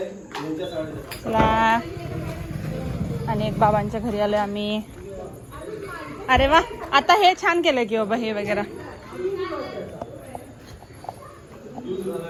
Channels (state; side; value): identical; both; correlation 1.00